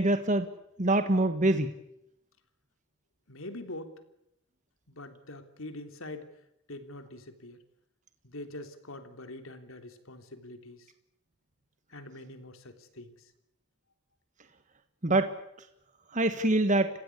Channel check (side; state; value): both; normal; correlation 0.44